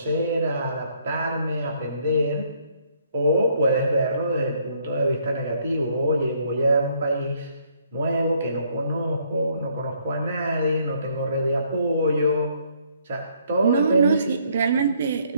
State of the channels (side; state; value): both; inverted; correlation -0.67